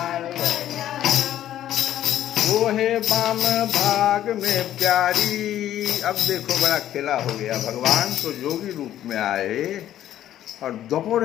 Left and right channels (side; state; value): right; quieter; 12.0 dB